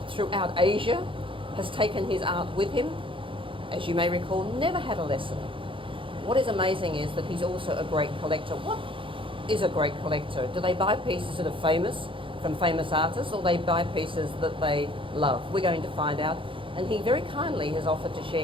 throughout Asia, has taken his art with him, as you may recall, never had a lesson. What is amazing is that he's also a great collector. What is a great collector? Do they buy pieces that are famous from famous artists, or they buy pieces that they love? We're going to find out. And he very kindly has offered to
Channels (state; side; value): late; left; 0.25 ms